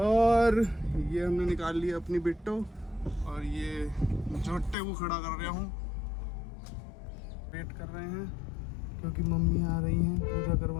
और ये हमने निकाल लिया अपनी बिट्टो, और ये जोटे को खड़ा कर रहा हूँ। वेट कर रहे हैं क्योंकि मम्मी आ रही हैं पूजा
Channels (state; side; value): drops out; right; at 4.8 s